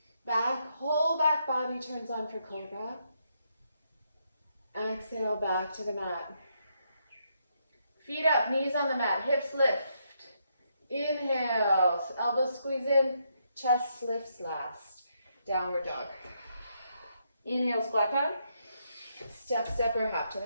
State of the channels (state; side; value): inverted; both; correlation -0.77